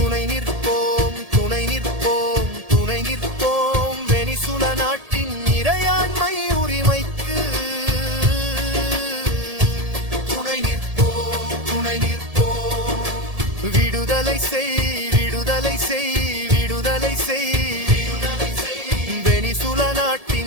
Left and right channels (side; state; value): left; late; 1.7 ms